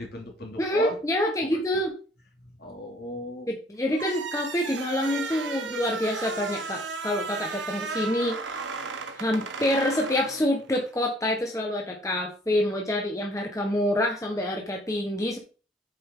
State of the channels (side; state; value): both; normal; correlation 0.58